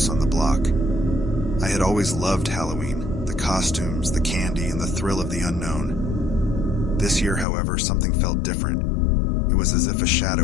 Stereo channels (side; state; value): right; drops out; at 7.5 s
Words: on the block. I had always loved Halloween, the costumes, the candy, and the thrill of the unknown. This year, however, something felt different. It was as if a